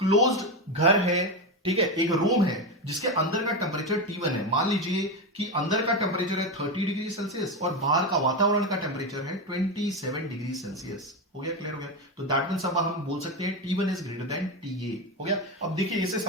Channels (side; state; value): both; normal; correlation 0.14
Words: घर है, ठीक है, एक रूम है जिसके अंदर का टेम्परेचर T1 है। मान लीजिए कि अंदर का टेम्परेचर है 30 डिग्री सेल्सियस और बाहर का वातावरण का टेम्परेचर है 27 डिग्री सेल्सियस। हो गया, क्लियर हो गया। तो दैट मींस अब हम बोल सकते हैं T1 is greater than TA। हो गया। अब देखिए इसे